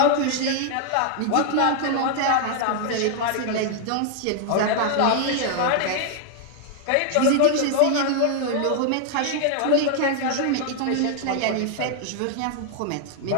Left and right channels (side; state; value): both; different; correlation 0.00